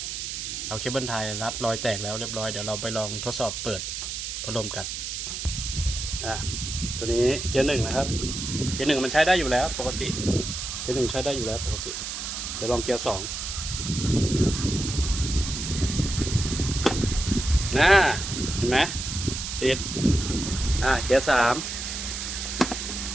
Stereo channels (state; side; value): noise; right; hiss, 5 dB below the sound